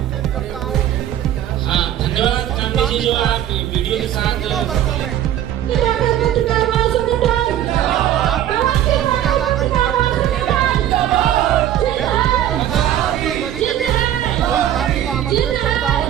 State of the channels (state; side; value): quieter; left; 11.6 dB